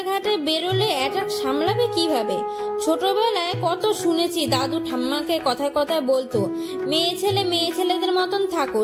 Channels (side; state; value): both; identical; correlation 1.00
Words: বেরোলে অ্যাটাক সামলাবে কিভাবে? ছোটবেলায় কত শুনেছি দাদু ঠাম্মাকে কথায় কথায় বলতো, মেয়ে ছেলেদের মতন থাকো,